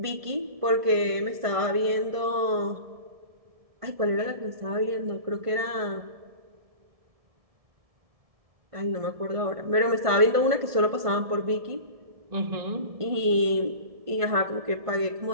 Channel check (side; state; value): left; late; 1.5 ms